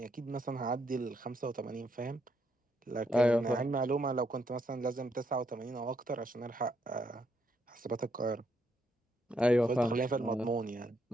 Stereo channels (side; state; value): both; normal; correlation 0.75